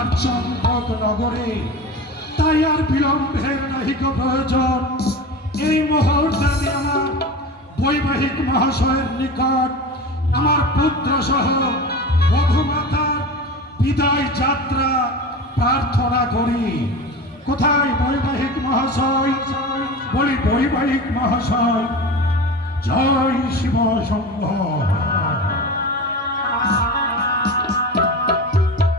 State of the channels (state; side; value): normal; both; correlation 0.30